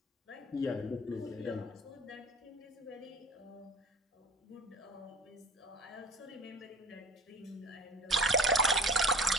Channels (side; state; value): both; normal; correlation 0.41